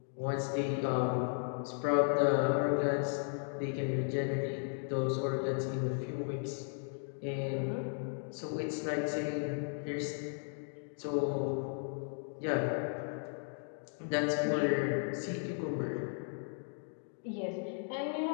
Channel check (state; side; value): silent; right; 54 dB below the other